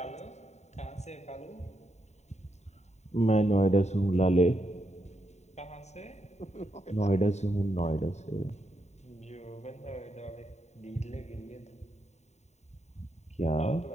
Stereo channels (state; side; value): late; right; 0.32 ms